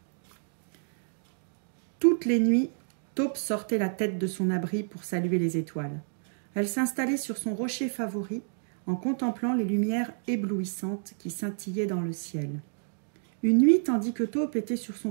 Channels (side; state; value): left; silent; digital silence